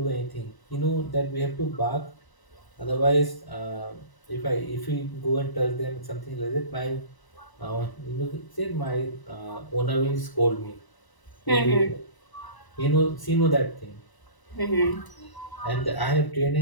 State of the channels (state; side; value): late; right; 1.0 ms